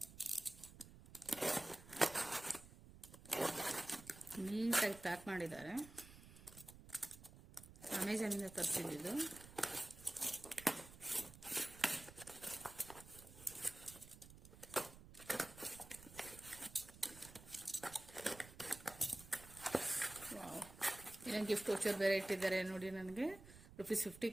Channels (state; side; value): noise; right; rumble, 17 dB below the sound